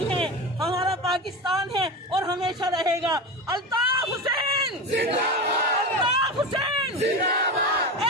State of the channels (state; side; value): normal; both; correlation 0.23